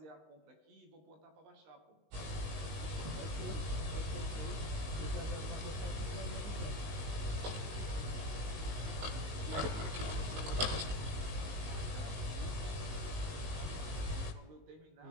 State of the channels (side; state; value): left; late; 19 ms